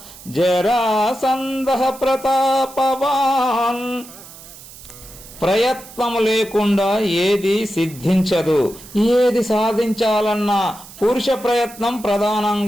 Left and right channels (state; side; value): noise; right; hiss, 18 dB below the sound